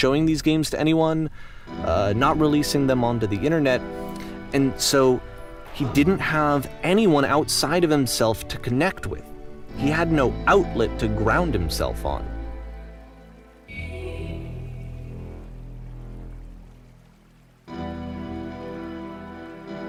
these games to anyone, not releasing them onto the internet, and so he didn't have anyone outside of himself to connect with. He had no outlet to ground himself on.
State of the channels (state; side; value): identical; both; correlation 1.00